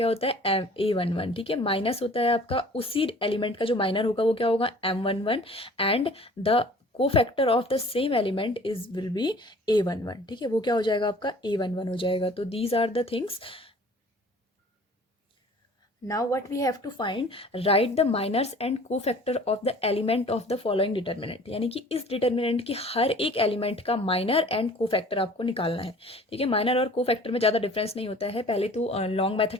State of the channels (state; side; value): normal; both; correlation 0.49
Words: होता है, A11. ठीक है, माइनस होता है आपका उसी एलिमेंट का जो माइनर होगा वो क्या होगा, M11 एंड द को factor of the same element is will be A11. ठीक है, वो क्या हो जाएगा आपका A11 हो जाएगा. तो these are the things. Now what we have to find, write the minors and cofactor of the element of the following determinant. यानी कि इस डिटर्मिनेंट की हर एक एलिमेंट का माइनर एंड कोफैक्टर आपको निकालना है. ठीक है, माइनर और कोफैक्टर में ज़्यादा डिफरेंस नहीं होता है. पहले तो लॉन्ग